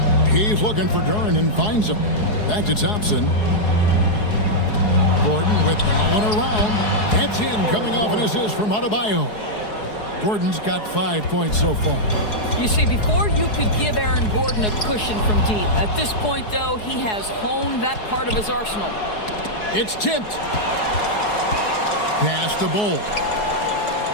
He's looking for Duren and finds him. Back to Thompson. Gordon with no one around. That's in, coming off an assist from Adebayo. Gordon's got 5 points so far. You see, before you could give Aaron Gordon a cushion from deep. At this point, though, he has honed that part of his arsenal. It's tipped. Pass the Bull.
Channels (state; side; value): late; right; 4.7 ms